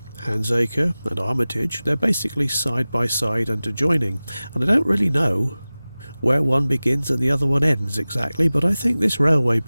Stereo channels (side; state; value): both; inverted; correlation -0.98